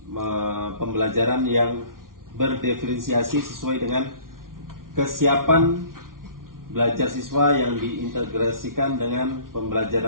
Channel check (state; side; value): late; left; 0.91 ms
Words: pembelajaran yang berdiferensiasi sesuai dengan kesiapan belajar siswa yang diintegrasikan dengan